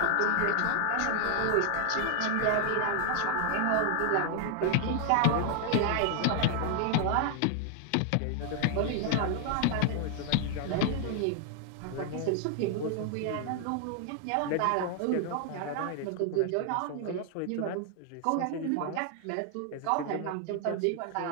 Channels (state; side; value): different; both; correlation 0.00